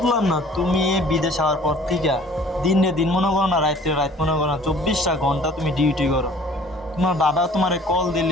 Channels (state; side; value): normal; both; correlation 0.51